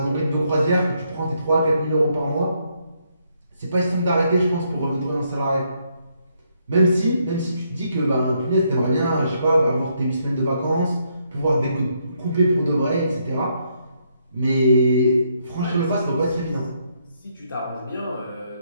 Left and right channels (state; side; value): inverted; both; correlation -0.75